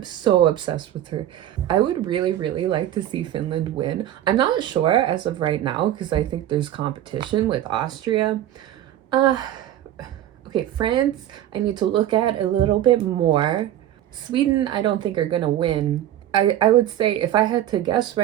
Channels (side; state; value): left; quieter; 12.2 dB